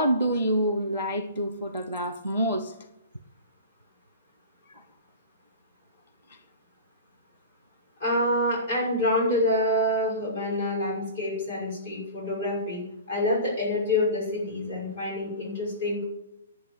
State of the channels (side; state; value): both; inverted; correlation -0.35